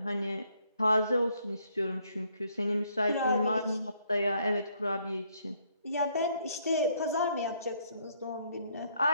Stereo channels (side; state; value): both; inverted; correlation -0.69